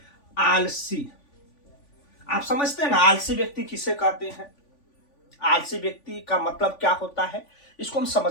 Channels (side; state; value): right; late; 3.5 ms